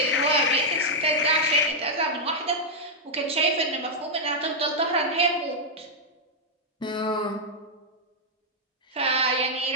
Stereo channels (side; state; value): both; normal; correlation -0.04